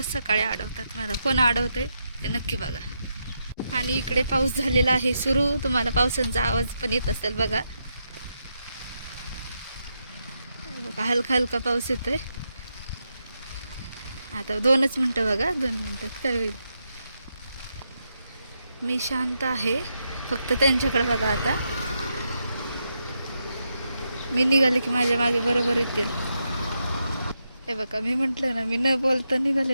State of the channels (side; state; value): both; inverted; correlation -0.83